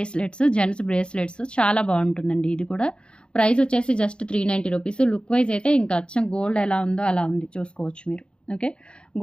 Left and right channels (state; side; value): late; right; 0.054 ms